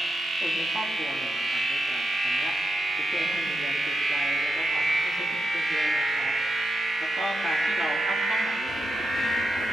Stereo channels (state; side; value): normal; both; correlation 0.85